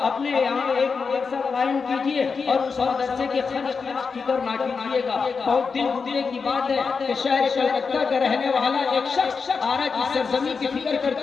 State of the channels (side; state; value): right; quieter; 5.2 dB